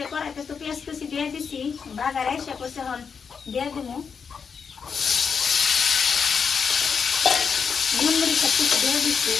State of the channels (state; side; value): quieter; right; 6.2 dB